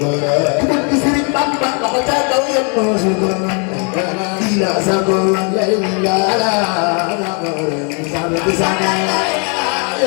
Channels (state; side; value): quieter; right; 37.4 dB